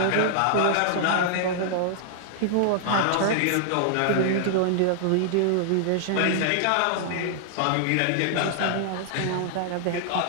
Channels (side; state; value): both; different; correlation -0.01